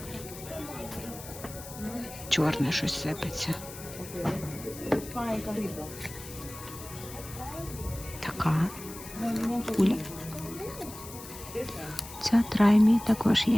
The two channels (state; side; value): noise; left; hiss, 14 dB below the sound